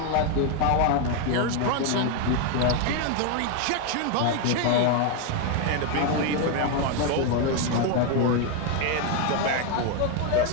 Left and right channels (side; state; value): both; different; correlation 0.01